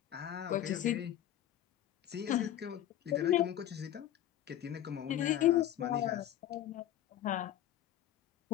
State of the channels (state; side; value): quieter; right; 12.0 dB